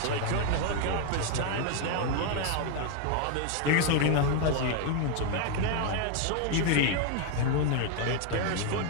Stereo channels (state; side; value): different; both; correlation 0.01